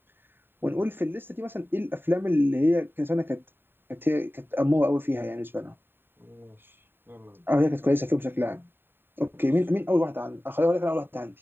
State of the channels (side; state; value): left; late; 0.10 ms